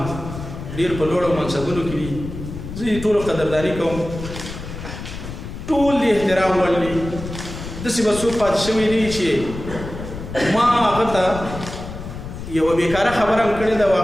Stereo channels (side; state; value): left; noise; rumble, 10 dB below the sound